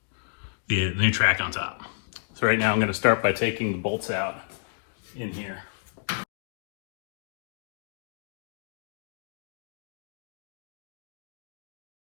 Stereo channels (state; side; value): silent; right; digital silence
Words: track on top. So right now I'm going to start by taking the bolts out in here.